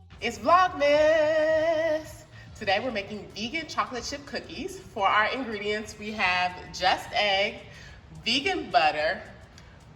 It's Vlogmas. Today we're making vegan chocolate chip cookies. For our ingredients, we have just egg, vegan butter,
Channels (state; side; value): identical; both; correlation 1.00